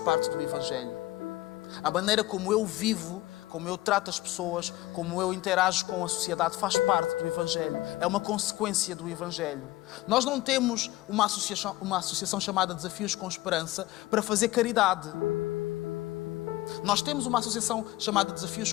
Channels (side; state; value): right; quieter; 17.6 dB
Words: do Evangelho. A maneira como eu vivo, como eu trato as pessoas, como eu interajo com a sociedade, faz parte do Evangelho. É uma consequência do Evangelho. Nós não temos uma associação chamada Desafios com Esperança para fazer caridade. Nós temos uma associação chamada Desafios